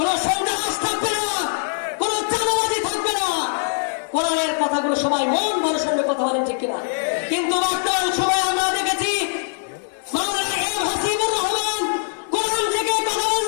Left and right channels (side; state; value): right; silent; digital silence